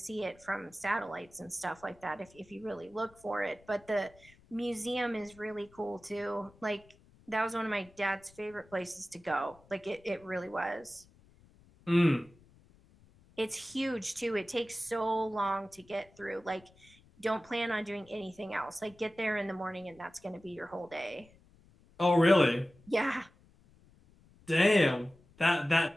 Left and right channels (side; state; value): left; noise; rumble, 27 dB below the sound